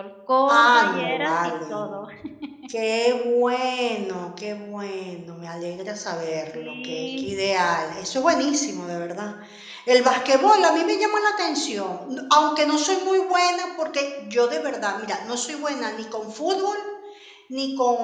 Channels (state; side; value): identical; both; correlation 1.00